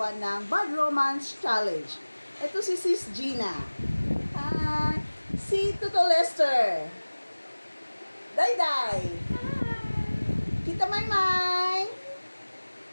ng Bad Romance Challenge. Ito si Sis Gina. Si Tuto Lester. Dayday. Tita Maymay.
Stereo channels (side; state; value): both; inverted; correlation -1.00